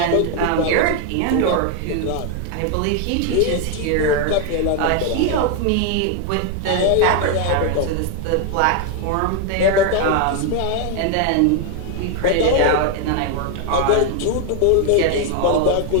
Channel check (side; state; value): both; different; correlation 0.01